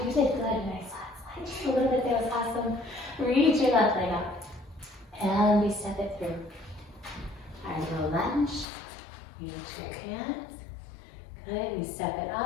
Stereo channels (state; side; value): drops out; right; at 8.7 s